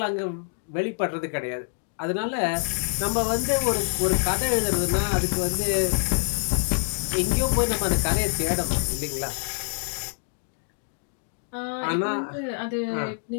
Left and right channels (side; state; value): right; silent; digital silence